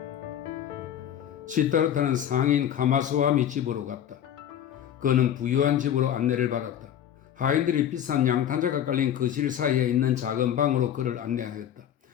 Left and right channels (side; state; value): right; quieter; 10.2 dB